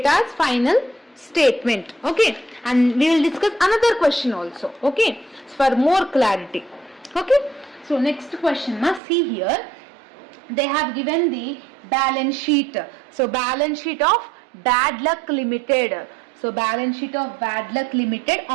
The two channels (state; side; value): drops out; left; at 9.0 s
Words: final statement. Okay, and we will discuss another question also. Okay, for more clarity. Okay, so next question, see here they have given the balance sheet. So balance sheet of Bad Luck Limited. So balance sheet of Bad Luck Limited